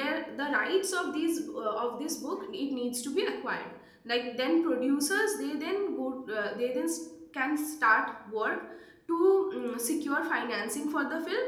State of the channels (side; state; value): both; identical; correlation 1.00